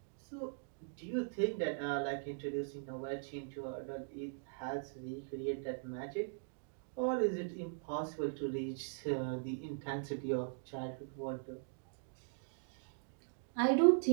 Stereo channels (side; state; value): left; silent; digital silence